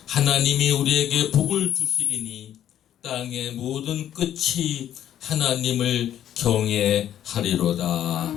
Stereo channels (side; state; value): right; quieter; 10.9 dB